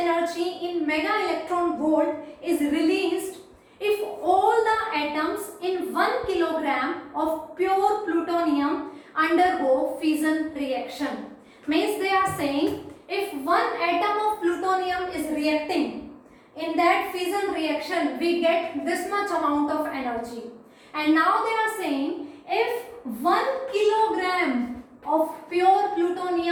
in mega electron volt is released if all the atoms in 1 kilogram of pure plutonium undergo fission reaction? Means they are saying if one atom of plutonium is reacting, in that fission reaction we get this much amount of energy. And now they are saying if 1 kilogram of pure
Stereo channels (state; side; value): identical; both; correlation 1.00